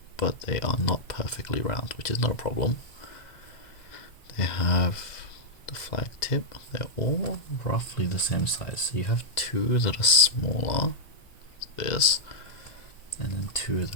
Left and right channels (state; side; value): late; right; 2.1 ms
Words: but they are not perfectly round, which is not a problem. They have the flag tip. They're all roughly the same size. So you have 2 that are smaller, this, and then 2